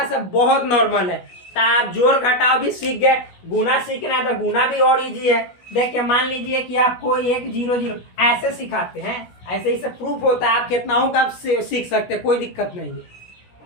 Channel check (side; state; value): right; late; 16 ms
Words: से बहुत नॉर्मल है। तो आप जोड़ घटाव भी सीख गए, गुना सीखना है तो गुना भी और इजी है। देखिए मान लीजिए कि आपको 1 0 0 ऐसे सिखाते हैं, ऐसे ही सब प्रूफ होता है। आप कितनाओं का आप सीख सकते हैं, कोई दिक्कत नहीं है।